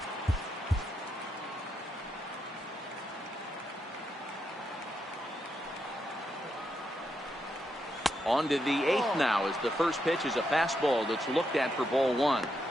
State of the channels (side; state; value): both; normal; correlation 0.82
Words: On to the 8th now as the first pitch is a fastball that's looked at for ball 1.